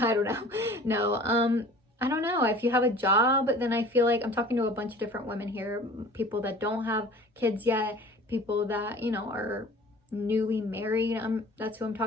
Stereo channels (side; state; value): both; normal; correlation 0.45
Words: don't know. No, I don't know. If you have a job, then I feel like I'm talking to a bunch of different women here, people that don't have kids yet, people that, you know, are newly married. That's who I'm